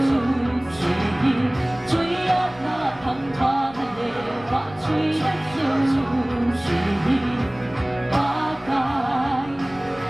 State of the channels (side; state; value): left; noise; rumble, 21 dB below the sound